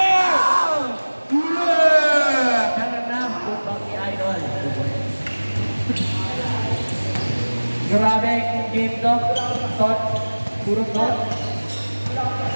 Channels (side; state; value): both; inverted; correlation -1.00